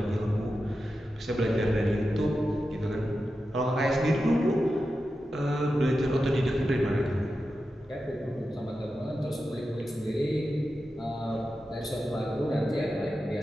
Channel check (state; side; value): normal; both; correlation 0.91